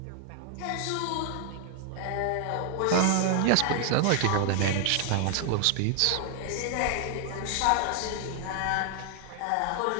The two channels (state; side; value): different; both; correlation 0.00